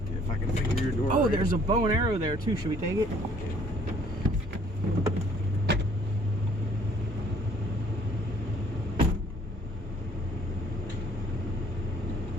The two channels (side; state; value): both; normal; correlation 0.60